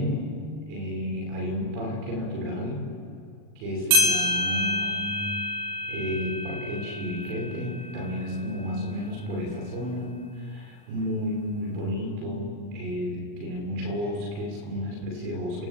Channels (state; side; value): late; left; 39 ms